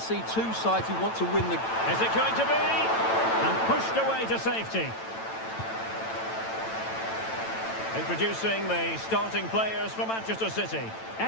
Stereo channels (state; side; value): late; right; 9.0 ms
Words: two sides who want to win the... Is it going to be? And pushed away to safety. Introducing the starting players for Manchester City.